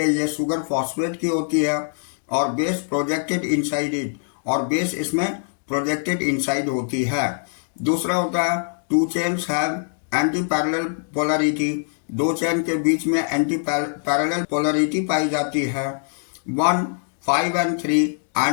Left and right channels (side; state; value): right; silent; digital silence